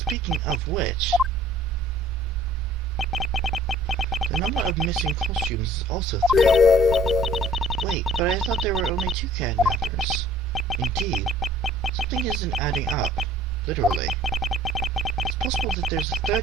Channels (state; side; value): normal; both; correlation 0.54